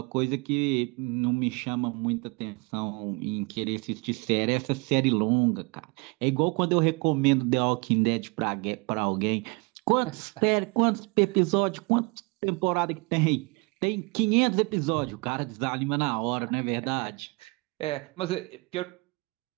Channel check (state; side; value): quieter; left; 28.9 dB